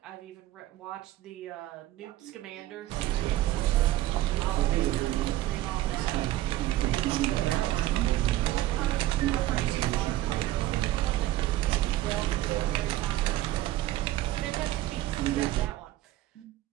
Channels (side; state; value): left; quieter; 15.3 dB